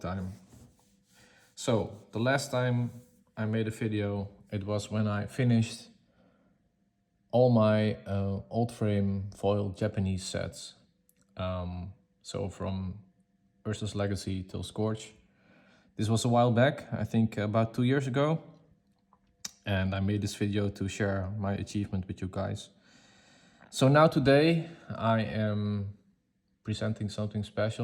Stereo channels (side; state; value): both; identical; correlation 1.00